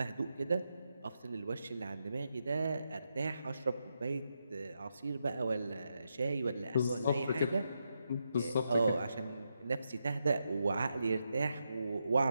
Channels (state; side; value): inverted; both; correlation -0.84